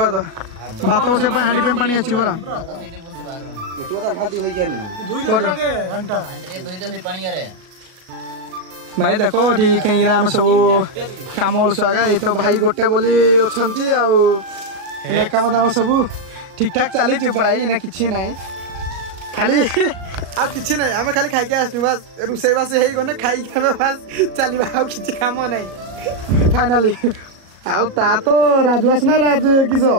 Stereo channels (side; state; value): left; late; 37 ms